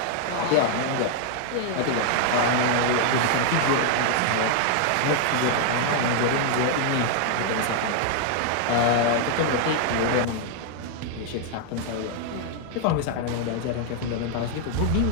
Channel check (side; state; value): both; different; correlation 0.00